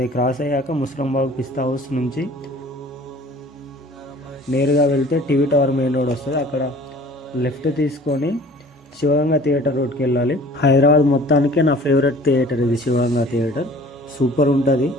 క్రాస్ అయ్యాక ముస్రంబాగ్ పిస్తా హౌస్ నుంచి నేరుగా వెళ్తే టీవీ టవర్ మెయిన్ రోడ్ వస్తుంది. అక్కడ లెఫ్ట్ తీసుకొని శివగంగా థియేటర్ రోడ్కి వెళ్ళాలి. హైదరాబాద్ మొత్తానికే నా ఫేవరెట్ థియేటర్ ఇది, శివగంగా థియేటర్. సూపర్ ఉంటుంది,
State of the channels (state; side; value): normal; both; correlation 0.48